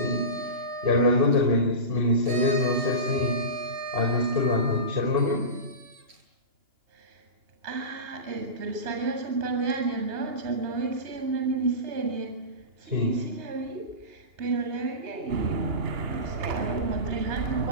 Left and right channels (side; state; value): left; late; 2.9 ms